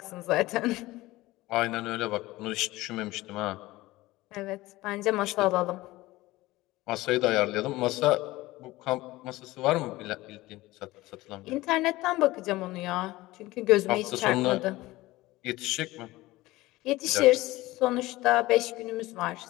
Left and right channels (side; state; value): right; quieter; 18.8 dB